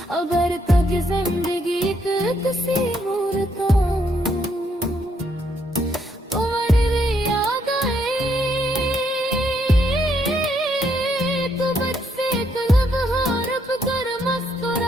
अगर तक जिंदगी किसी मूर्त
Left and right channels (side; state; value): both; normal; correlation 0.73